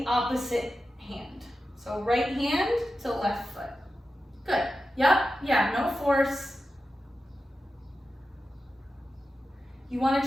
opposite hand. So right hand to left foot. Good. Yep. Yeah, no force. You want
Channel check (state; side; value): normal; both; correlation 0.92